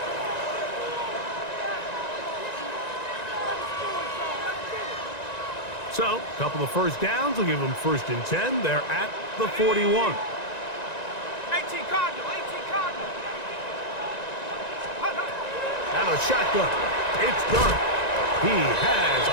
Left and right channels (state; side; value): late; right; 1.9 ms